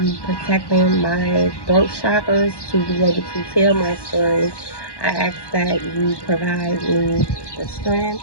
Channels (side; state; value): right; late; 1.1 ms